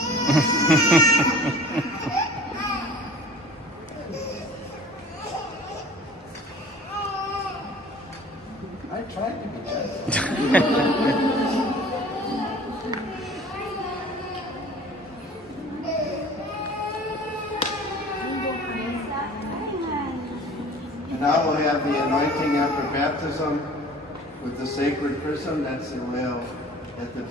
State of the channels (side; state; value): both; normal; correlation 0.45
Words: I tried to be gentle. And now we'll have the anointing after baptism with the sacred chrism. That's the oil that the